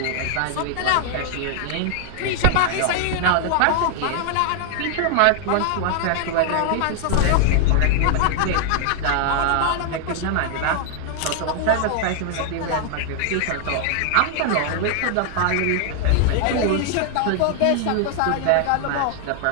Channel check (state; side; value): different; both; correlation 0.00